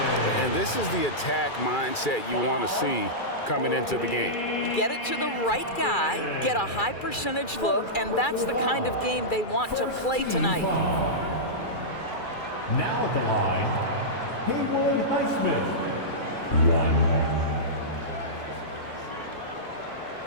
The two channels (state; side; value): late; right; 2.3 ms